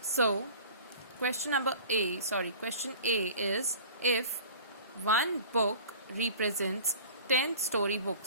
So, question A is if one book represents 10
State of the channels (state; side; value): inverted; both; correlation -0.42